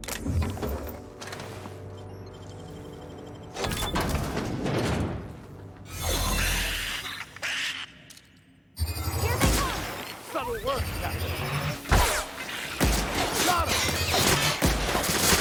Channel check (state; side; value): identical; both; correlation 1.00